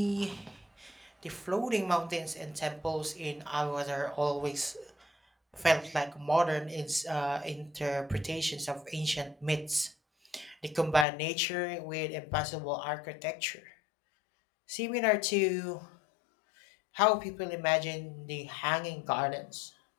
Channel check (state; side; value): drops out; right; at 11.1 s